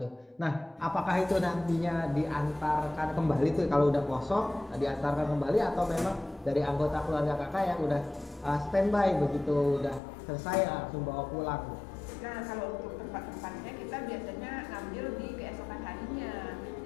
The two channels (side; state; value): right; drops out; at 10.0 s